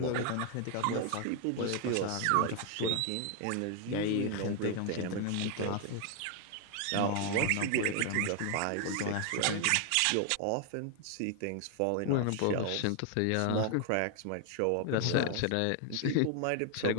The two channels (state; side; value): different; both; correlation 0.00